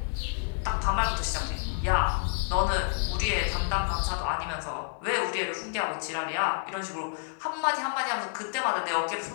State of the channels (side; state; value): right; silent; 58 dB below the other